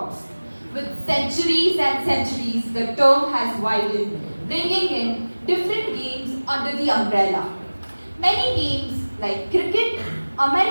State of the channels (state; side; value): inverted; both; correlation -1.00